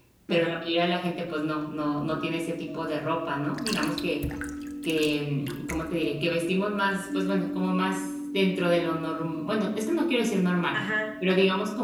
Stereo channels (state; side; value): identical; both; correlation 1.00